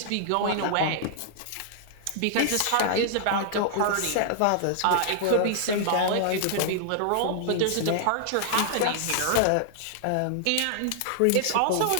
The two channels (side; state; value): both; different; correlation -0.01